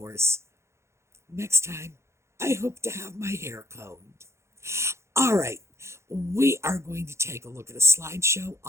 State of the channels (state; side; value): late; left; 0.13 ms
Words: next time, I hope to have my hair combed. All right, we are going to take a look at a slideshow